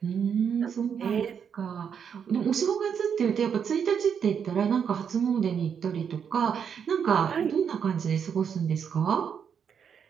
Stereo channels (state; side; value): quieter; left; 7.4 dB